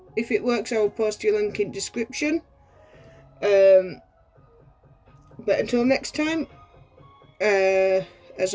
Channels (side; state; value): both; identical; correlation 1.00